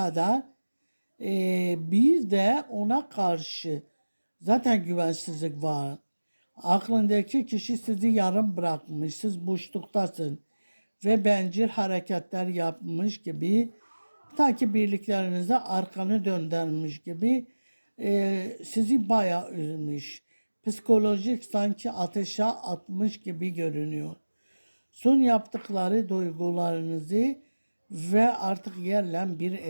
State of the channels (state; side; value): inverted; both; correlation -1.00